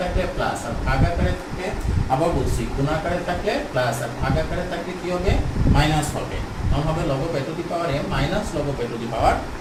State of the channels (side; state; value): both; identical; correlation 1.00